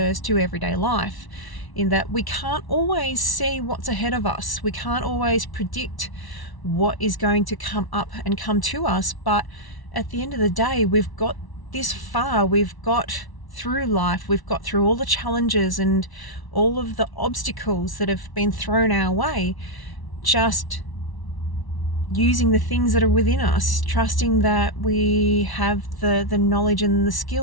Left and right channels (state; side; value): late; right; 1.1 ms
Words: to everyday life, in that we can't always see what's ahead of us. We can't always predict what is going to come up and come to us. But at the end of the day, we've got this far, we've got through life, we've got through all the challenges and all of the obstacles that have been thrown our way, just using the things that are within us, trusting that we have the knowledge and the